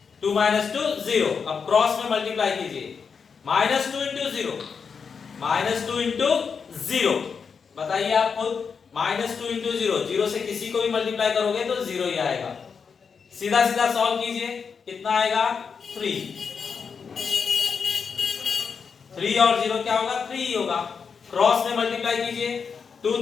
2 - 2 0। अब क्रॉस में मल्टीप्लाई कीजिए, -2 × 0, -2 × 0। बताइए आप खुद, -2 × 0, 0 से किसी को भी मल्टीप्लाई करोगे तो 0 ही आएगा। सीधा सीधा सॉल्व कीजिए, कितना आएगा 3 और 0 क्या होगा, 3 ही होगा। क्रॉस में मल्टीप्लाई कीजिए, 2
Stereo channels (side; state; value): right; quieter; 5.9 dB